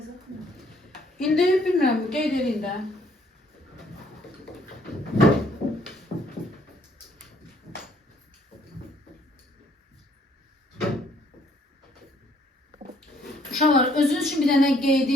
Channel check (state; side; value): normal; both; correlation 0.64